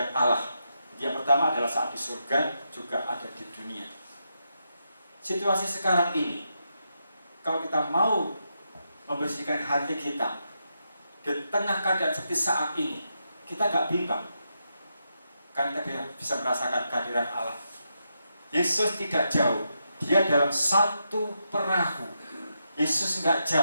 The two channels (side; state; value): both; inverted; correlation -0.84